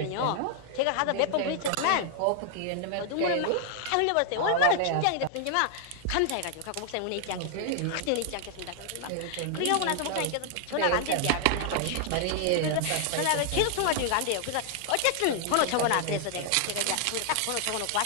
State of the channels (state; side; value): different; both; correlation 0.00